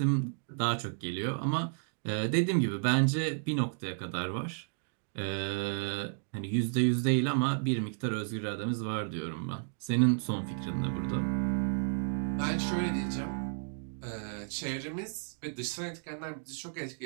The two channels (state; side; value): silent; left; digital silence